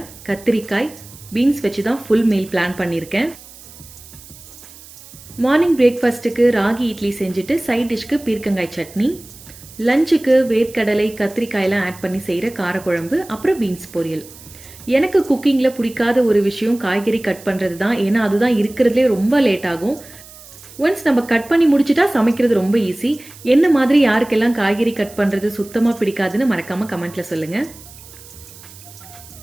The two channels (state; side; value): noise; right; hiss, 20 dB below the sound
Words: கத்திரிக்காய், பீன்ஸ் வச்சு தான் ஃபுல் மீல் பிளான் பண்ணியிருக்கேன். மார்னிங் பிரேக்ஃபாஸ்ட்டுக்கு ராகி இட்லி செஞ்சுட்டு சைட் டிஷ்க்கு பீர்க்கங்காய் சட்னி, லஞ்சுக்கு வேர்க்கடலை கத்திரிக்காயெல்லாம் ஆட் பண்ணி செய்கிற காரக்குழம்பு, அப்புறம் பீன்ஸ் பொரியல். எனக்கு குக்கிங்கில் பிடிக்காத ஒரு விஷயம் காய்கறி கட் பண்ணுறது தான். ஏன்னா அதுதான் இருக்கிறதுலே ரொம்ப லேட் ஆகும். ஒன்ஸ் நம்ம கட் பண்ணி முடிச்சுட்டா சமைக்கிறது ரொம்ப ஈஸி. என்ன மாதிரி யாருக்கெல்லாம் காய்கறி கட் பண்ணுறது சுத்தமாக பிடிக்காதுன்னு மறக்காமல் கமெண்ட்டில் சொல்லுங்கள்.